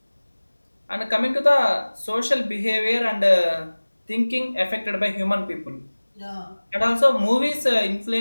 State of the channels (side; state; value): both; inverted; correlation -1.00